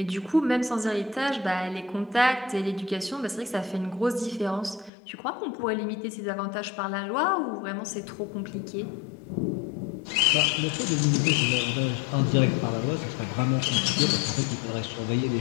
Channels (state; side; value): drops out; right; at 4.9 s